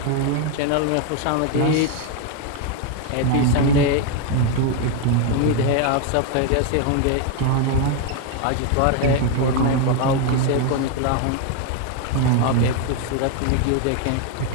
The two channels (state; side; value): different; both; correlation 0.01